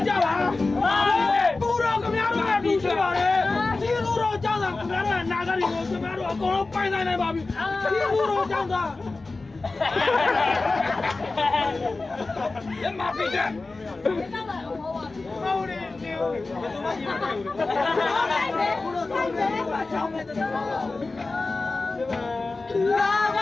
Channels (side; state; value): right; quieter; 3.5 dB